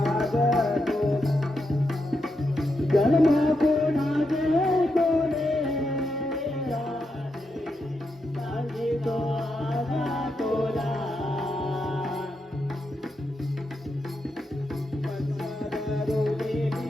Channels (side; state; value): both; normal; correlation 0.84